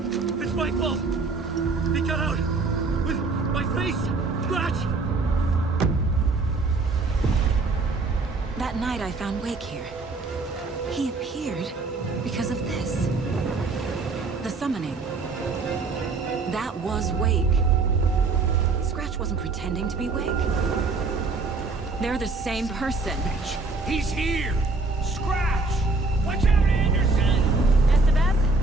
It's my fault! He got out! With my face! Scratch! That night I found Wake here. He appeared because of this. The summoning. That was Wake. Scratch wasn't pretending to be Wake. They're the same person. He's here! Scratch! Watch out, Anderson!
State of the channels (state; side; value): quieter; left; 3.8 dB